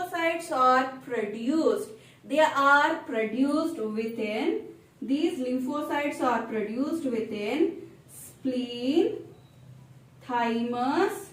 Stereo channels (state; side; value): identical; both; correlation 1.00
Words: are produced. They are produced within, these lymphocytes are produced within spleen, thymus